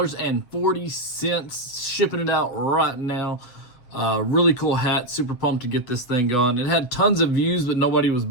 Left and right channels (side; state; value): right; late; 8.1 ms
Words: shipping it out right now. Really cool hat, super pumped to get this thing going. It had tons of views, but nobody was